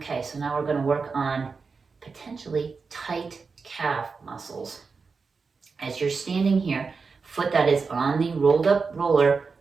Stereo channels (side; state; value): left; quieter; 4.8 dB